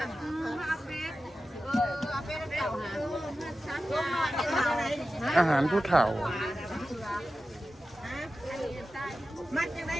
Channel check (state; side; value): normal; both; correlation 0.93